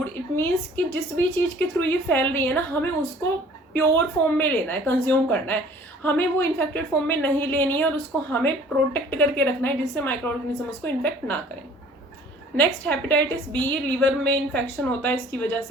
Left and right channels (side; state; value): both; normal; correlation 0.52